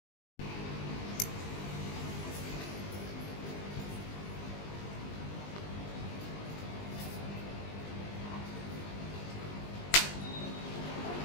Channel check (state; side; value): late; right; 20 ms